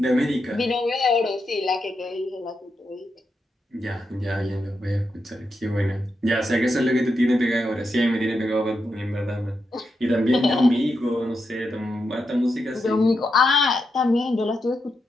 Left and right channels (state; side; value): normal; both; correlation 0.85